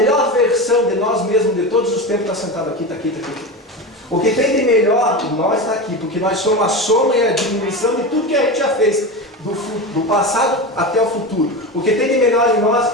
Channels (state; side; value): normal; both; correlation 0.23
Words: versão de nós mesmos de todos os tempos está sentado aqui, está aqui, está aqui. O que tem de melhor em nós está aqui, porque nós somos a soma e a diminuição de tudo que a gente já fez, do passado até o futuro. O que tem de melhor em